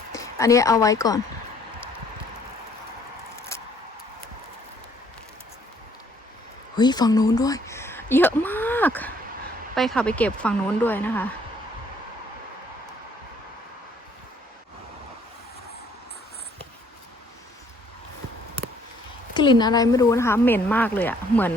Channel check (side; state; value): both; normal; correlation 0.62